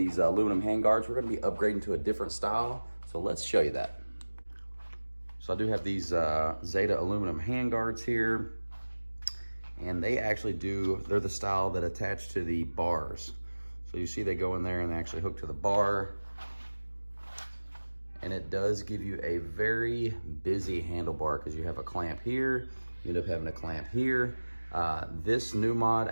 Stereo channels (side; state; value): both; inverted; correlation -1.00